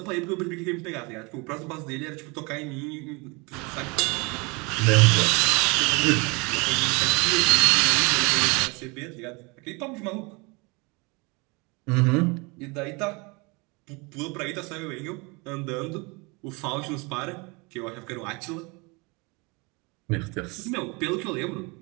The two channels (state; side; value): quieter; left; 28.2 dB